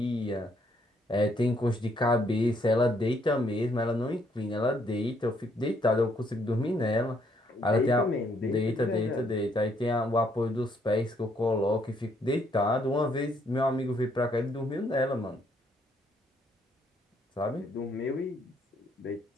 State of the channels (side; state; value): both; normal; correlation 0.70